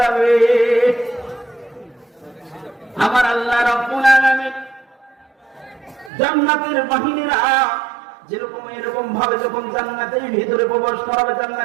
আমার আল্লাহ রাব্বুল আলামিন জান্নাতের বাহিনীরা যেরকম এরকম ভাবে যখন জান্নাতের ভিতরে প্রবেশ করাবে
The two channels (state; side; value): drops out; left; at 6.1 s